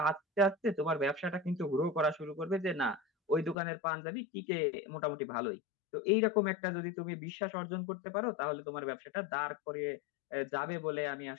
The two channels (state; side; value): drops out; right; at 3.6 s